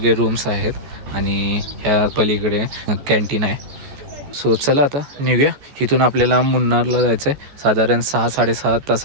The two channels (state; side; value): late; left; 14 ms